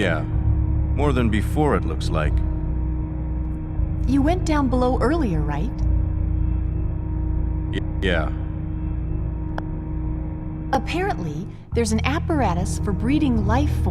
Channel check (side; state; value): both; identical; correlation 1.00